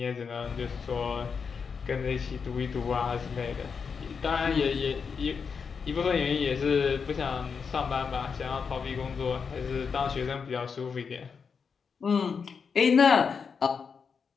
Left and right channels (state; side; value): quieter; right; 5.9 dB